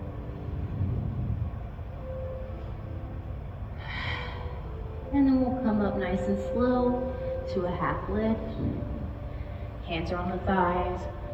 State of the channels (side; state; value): both; identical; correlation 1.00